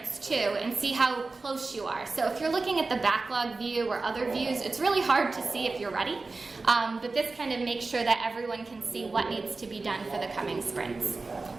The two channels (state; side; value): quieter; left; 3.7 dB